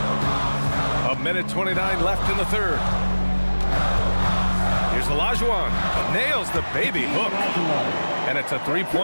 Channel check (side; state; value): both; inverted; correlation -1.00